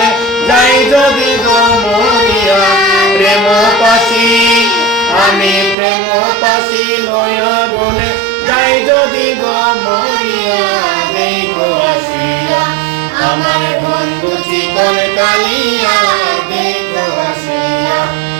যাই যদি গমরিয়া, প্রেম পাশি আমি প্রেম পাশি লয়া গলে যাই যদি গমরিয়া দেখো আসিয়া। আমার বন্ধু চিকন কালিয়া দেখো আসিয়া।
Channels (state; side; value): drops out; left; at 5.8 s